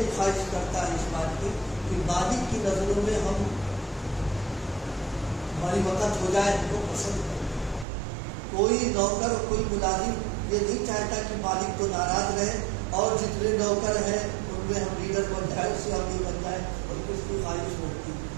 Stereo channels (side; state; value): left; drops out; at 7.9 s